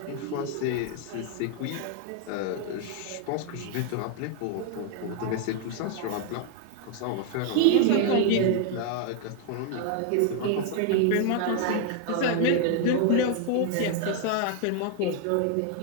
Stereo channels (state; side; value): different; both; correlation 0.00